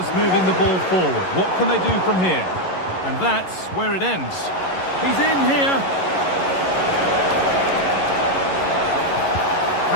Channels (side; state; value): right; late; 11 ms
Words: moving the ball forward. What can they do from here? And that's where it ends. He's in here.